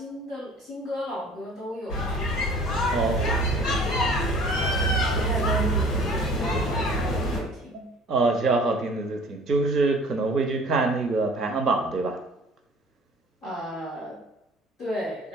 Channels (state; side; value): normal; both; correlation 0.49